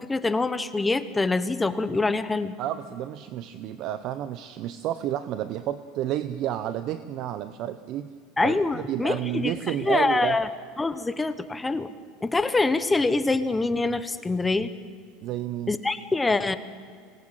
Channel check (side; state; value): both; normal; correlation 0.79